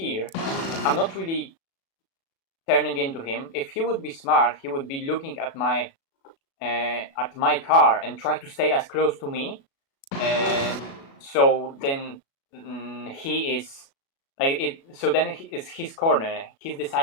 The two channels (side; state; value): right; late; 36 ms